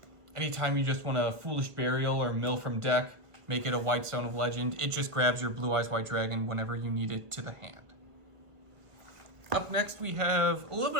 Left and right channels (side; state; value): left; late; 1.4 ms